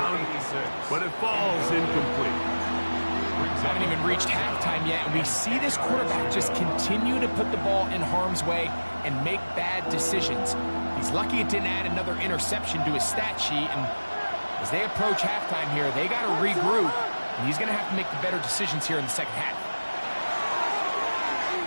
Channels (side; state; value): both; inverted; correlation -1.00